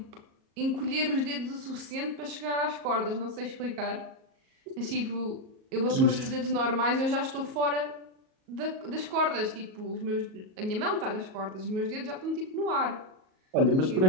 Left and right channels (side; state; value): left; late; 38 ms